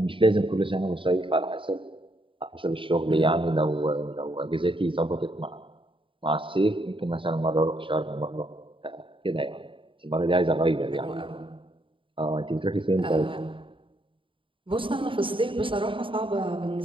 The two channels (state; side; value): late; left; 0.25 ms